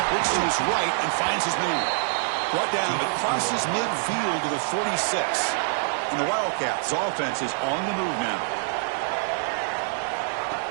looks to his right and finds his man. Brought down, but crosses midfield to the 46. And the Wildcats' offense is on the move now.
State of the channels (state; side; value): silent; left; digital silence